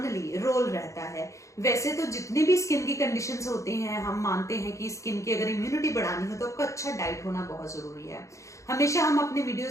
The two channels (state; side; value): late; right; 0.15 ms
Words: रोल रहता है। वैसे तो जितनी भी स्किन की कंडीशंस होती हैं, हम मानते हैं कि स्किन की अगर इम्यूनिटी बढ़ानी हो तो आपका अच्छा डाइट होना बहुत जरूरी है। हमेशा हम अपने